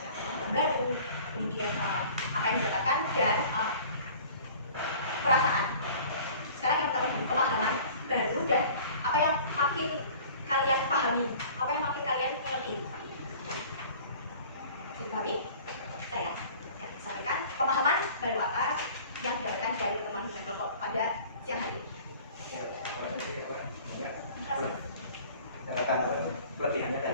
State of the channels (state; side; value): inverted; both; correlation -0.47